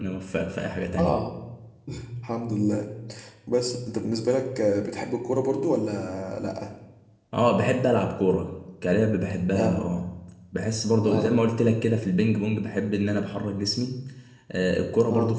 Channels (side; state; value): both; identical; correlation 1.00